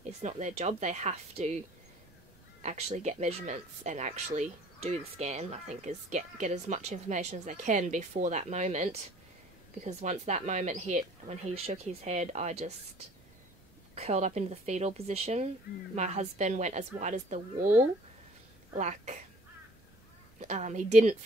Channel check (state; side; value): noise; right; rumble, 28 dB below the sound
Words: It's not their job. They have to actually get measurements and actually do the scan, I think, is get as much information as they can before that moment, because once that moment hit, when he shook his head, I just curled up into the fetal position. My husband went as white as the wall, like, he didn't